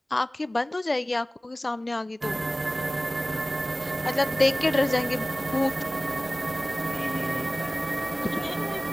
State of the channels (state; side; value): normal; both; correlation 0.97